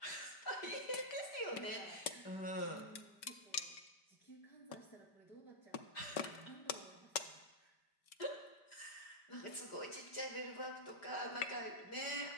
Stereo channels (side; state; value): right; late; 5.2 ms